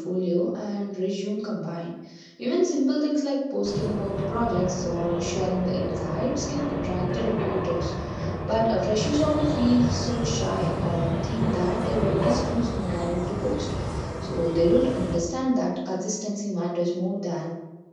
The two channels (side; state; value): both; identical; correlation 1.00